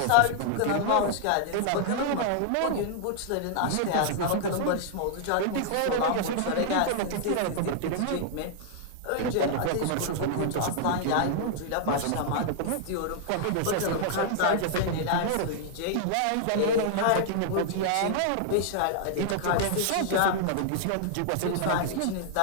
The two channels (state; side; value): different; both; correlation -0.01